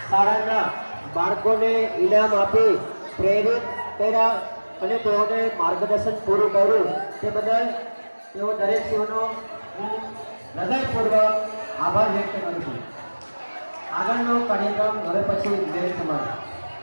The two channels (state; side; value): inverted; both; correlation -1.00